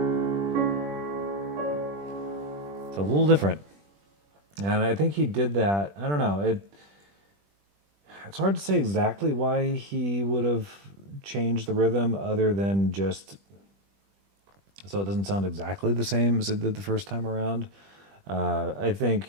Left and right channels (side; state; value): left; late; 20 ms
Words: it's a little different. And I think he did that. I don't know. It's hard to say exactly why he would have changed the rhythm other than just so it doesn't sound exactly the same as it did the first time around. I think